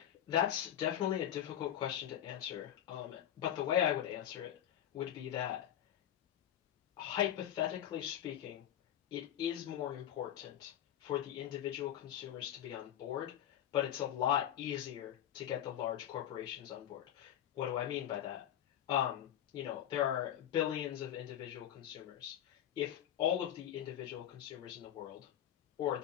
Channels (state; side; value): quieter; right; 11.0 dB